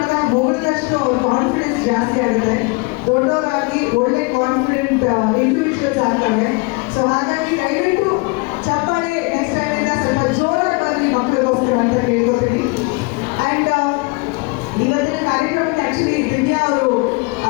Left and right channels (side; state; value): right; quieter; 28.6 dB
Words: ಹೊಗಳಿದಷ್ಟು ಅವ್ರ ಕಾನ್ಫಿಡೆನ್ಸ್ ಜಾಸ್ತಿ ಆಗುತ್ತೆ, ದೊಡ್ಡವರಾಗಿ ಒಳ್ಳೆ ಕಾನ್ಫಿಡೆಂಟ್ ಇಂಡಿವಿಜುವಲ್ಸ್ ಆಗ್ತವೆ. ಸೊ ಹಾಗಾಗಿ ದಯವಿಟ್ಟು ಚಪ್ಪಾಳೆ ನೆಕ್ಸ್ಟ್ ಟೈಮ್ ಇಂದ ಸ್ವಲ್ಪ ಜೋರಾಗಿ ಬರಲಿ ಮಕ್ಕಳಿಗೋಸ್ಕರ ಅಂತ ಹೇಳ್ಕೊತೀನಿ. ಆ್ಯಂಡ್ ಇವತ್ತಿನ ಕಾರ್ಯಕ್ರಮಕ್ಕೆ ಆ್ಯಕ್ಚುಲಿ ದಿವ್ಯಾ ಅವರು